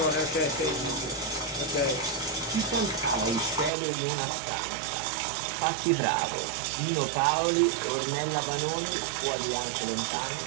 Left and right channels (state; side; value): drops out; left; at 3.7 s